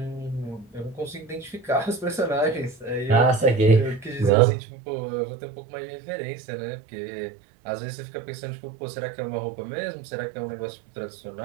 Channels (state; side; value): drops out; left; at 4.3 s